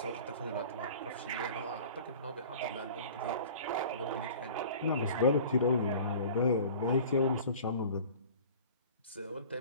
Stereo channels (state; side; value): inverted; both; correlation -0.42